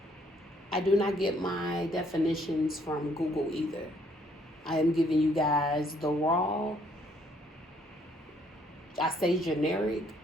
I do not get my definitions from Google either. I am giving you guys the raw, I say generic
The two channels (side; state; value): both; normal; correlation 0.66